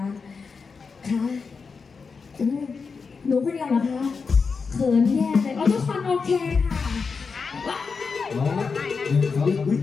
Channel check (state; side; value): quieter; right; 5.1 dB